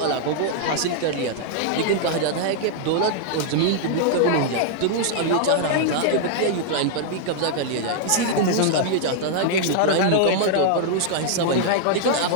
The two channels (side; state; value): both; different; correlation -0.01